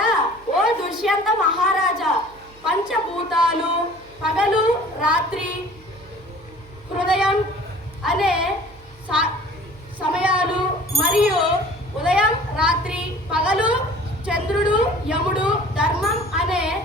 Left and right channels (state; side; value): noise; right; hum, 25 dB below the sound